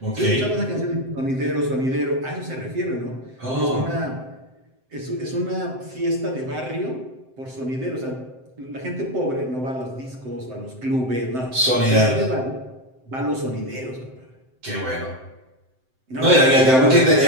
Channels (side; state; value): left; late; 7.8 ms